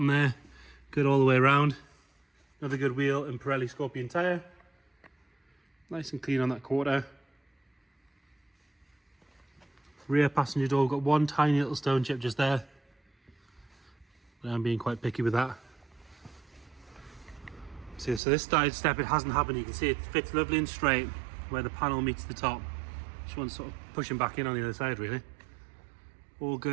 there. Good all the way around. Another good wheel and Pirelli Scorpion tyre. Nice and clean on that quarter. Rear passenger door, got one tiny little stone chip just there. But I'm being quite picky with that. See, so this side step, it hasn't happened. You can see it fits lovely and straight where the panel meets the top. Just one sort of pushing back in on the other side, really. All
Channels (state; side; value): drops out; left; at 18.2 s